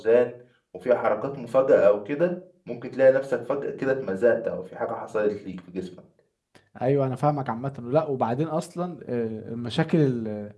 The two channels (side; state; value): both; identical; correlation 1.00